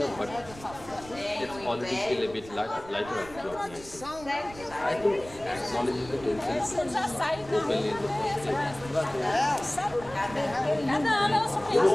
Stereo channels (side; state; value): right; noise; rumble, 18 dB below the sound